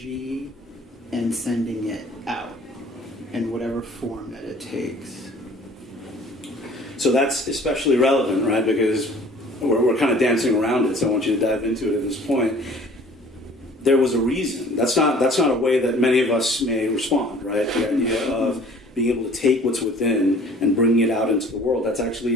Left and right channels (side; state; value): both; normal; correlation 0.51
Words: and sending it out in whatever form that it takes. So that's especially relevant, right? Because we're kind of dancing around it, so I want you to dive into it at this point. There was a reason. That's not a way that many of us may respond, right? The idea of being able to take what's within and bringing it out into the world. That's